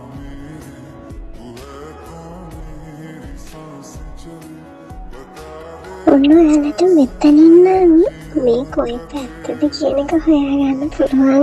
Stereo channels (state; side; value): identical; both; correlation 1.00